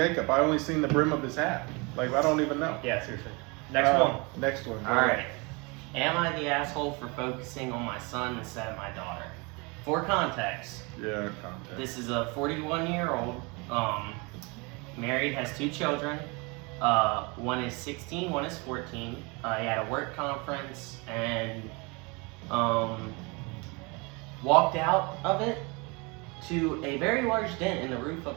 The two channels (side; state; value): left; quieter; 28.7 dB